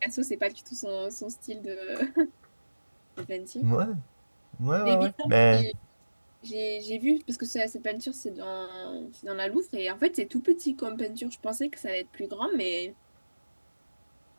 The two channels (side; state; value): both; inverted; correlation -1.00